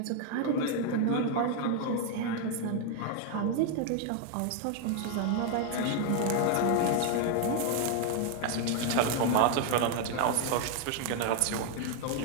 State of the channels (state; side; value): different; both; correlation 0.00